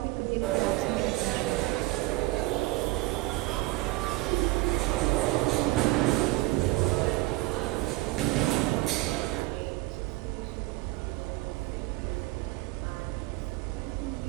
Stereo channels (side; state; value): left; quieter; 20.2 dB